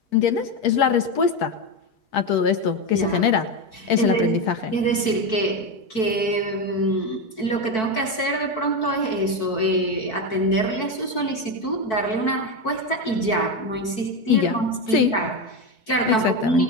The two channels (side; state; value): right; late; 4.6 ms